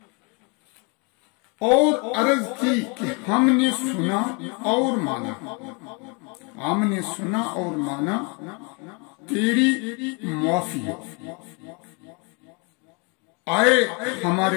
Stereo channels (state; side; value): quieter; right; 32.6 dB